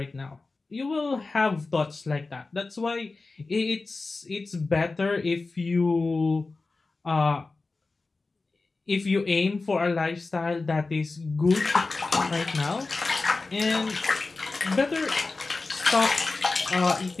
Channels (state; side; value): quieter; right; 3.7 dB